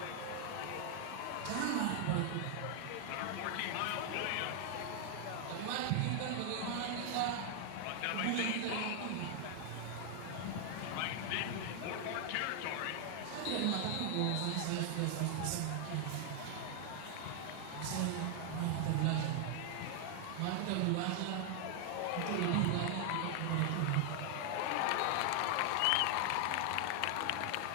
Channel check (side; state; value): both; different; correlation 0.00